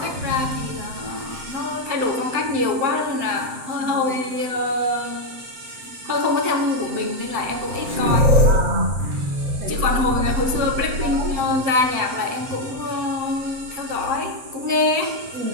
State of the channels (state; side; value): late; left; 7.7 ms